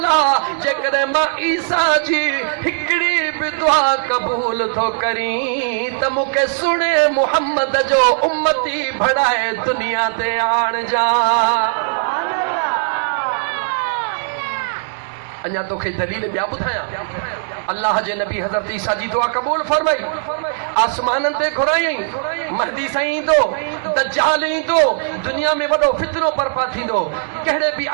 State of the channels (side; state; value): left; silent; digital silence